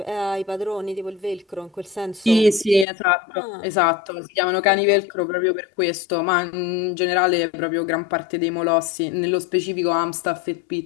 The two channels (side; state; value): right; drops out; at 2.9 s